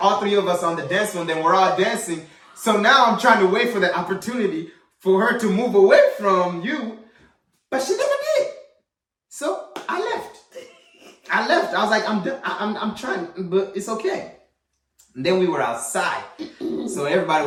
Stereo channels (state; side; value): identical; both; correlation 1.00